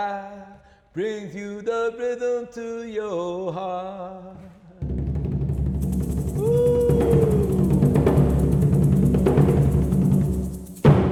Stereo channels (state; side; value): identical; both; correlation 1.00